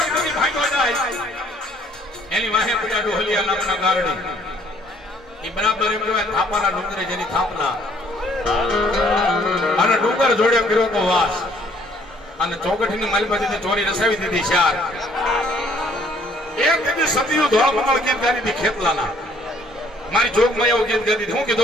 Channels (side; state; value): both; normal; correlation 0.62